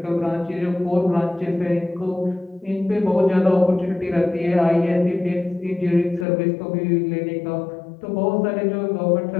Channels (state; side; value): drops out; right; at 6.2 s